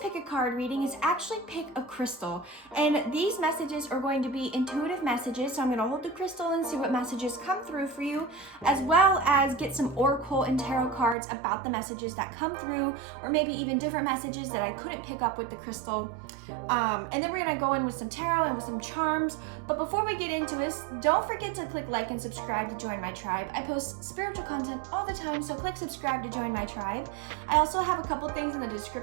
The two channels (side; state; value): left; drops out; at 11.2 s